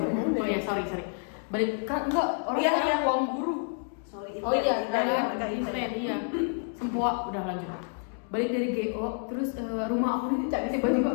Oh ya sorry. Balik kan enggak orang yang uang guru. Sorry. Oh iya, iya. Sempua udah lanjut. Balik dari GO, terus rumah aku ini tiba-tiba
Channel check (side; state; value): right; silent; 59 dB below the other